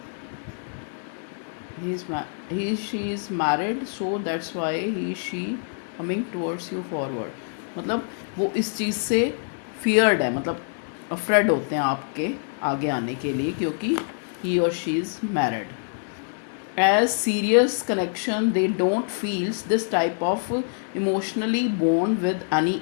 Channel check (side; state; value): right; silent; 61 dB below the other